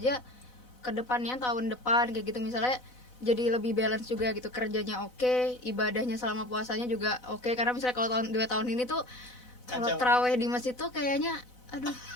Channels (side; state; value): right; late; 4.0 ms